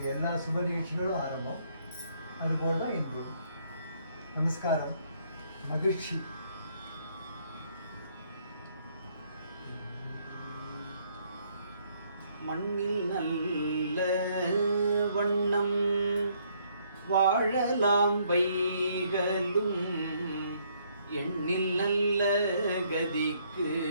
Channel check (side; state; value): both; inverted; correlation -0.68